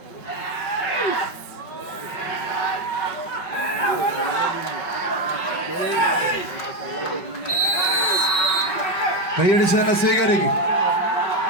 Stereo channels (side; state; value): right; late; 5.3 ms